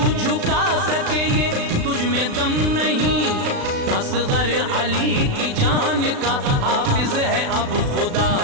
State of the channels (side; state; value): left; late; 36 ms